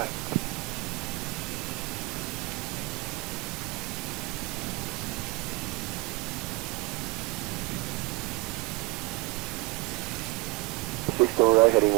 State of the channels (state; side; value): quieter; left; 24.6 dB